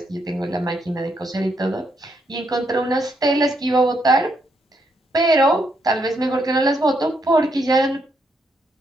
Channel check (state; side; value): normal; both; correlation 0.77